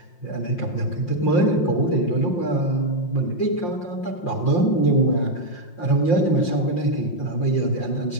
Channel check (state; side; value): late; right; 5.7 ms